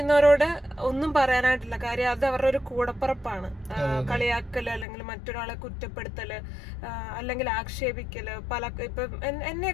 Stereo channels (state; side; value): drops out; right; at 4.9 s